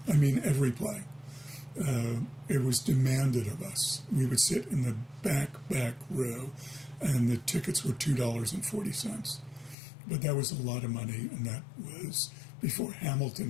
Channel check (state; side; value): drops out; right; at 9.8 s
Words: I mean, every play. It was demanded of us. We would sit in the back row, and the tickets were $2.40. But that was a lot of money, and that was before